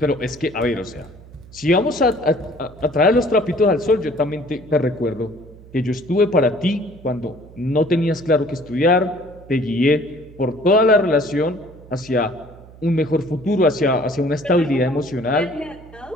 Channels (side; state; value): right; noise; hum, 21 dB below the sound